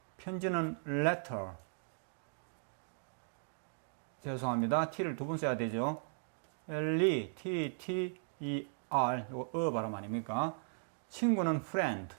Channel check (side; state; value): left; silent; digital silence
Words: 편지는 letter. 죄송합니다. t를 두 번 써야 되죠. T-E-R, 이거 발음 아닙니까? 친구는 friend,